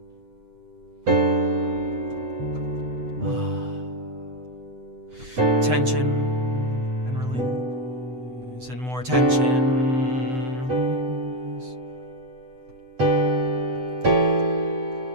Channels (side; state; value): left; late; 7.9 ms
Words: tension and release, and more tension, release.